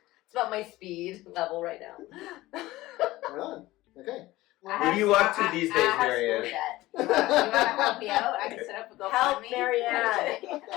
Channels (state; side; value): quieter; right; 17.8 dB